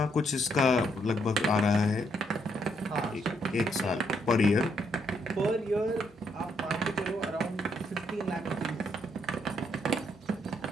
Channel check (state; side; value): normal; both; correlation 0.74